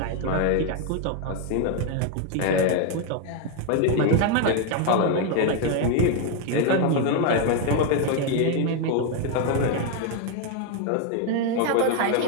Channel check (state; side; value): different; both; correlation 0.01